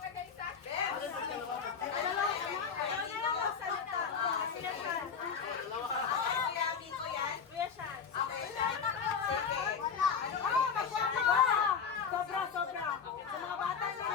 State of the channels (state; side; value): quieter; right; 6.4 dB